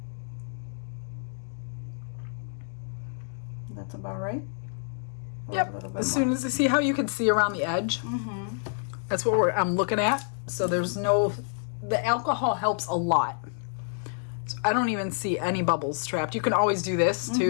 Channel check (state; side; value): silent; right; digital silence